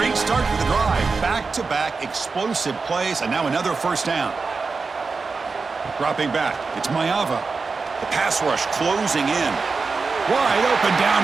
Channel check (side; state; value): left; quieter; 4.5 dB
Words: start to the drive. Back-to-back explosive plays, and now another first down. Dropping back, it's Mayava. The pass rush closing in. Wide open